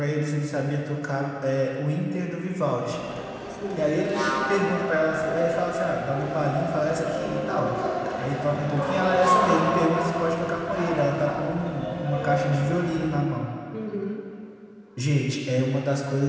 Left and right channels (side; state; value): both; identical; correlation 1.00